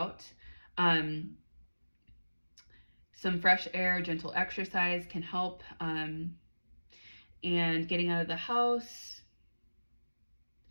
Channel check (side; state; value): both; inverted; correlation -1.00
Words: Some fresh air, gentle exercise can help. And getting out of the house.